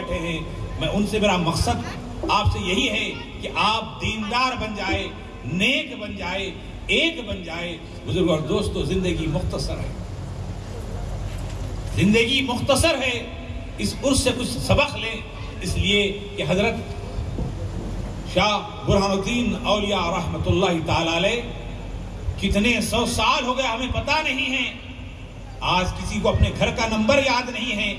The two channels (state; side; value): identical; both; correlation 1.00